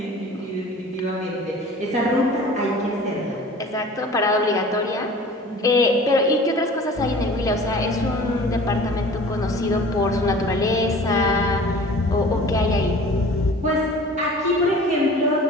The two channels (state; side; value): normal; both; correlation 0.44